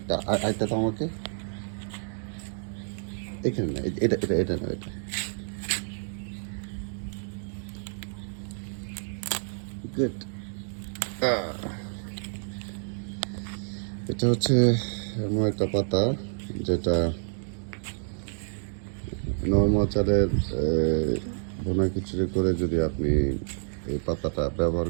আরেকটা তো আমাকে এখানে না, এটা এটা এটা না, এটা গুড। এটা হচ্ছে এমন একটা পাতা যেটা নর্মাল চালের ভুনা খিচুড়ি করে যদি আপনি এই পাতাটা ব্যবহার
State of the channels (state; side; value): silent; left; digital silence